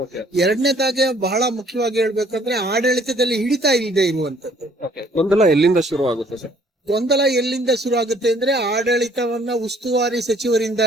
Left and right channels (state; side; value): normal; both; correlation 0.59